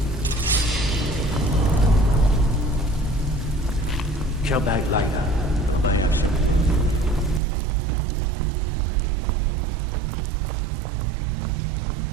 Come back like that.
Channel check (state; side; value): drops out; left; at 7.4 s